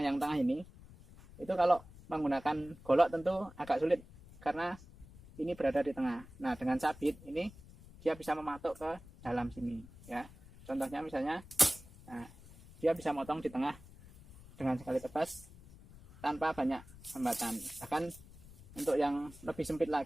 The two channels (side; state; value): left; noise; rumble, 20 dB below the sound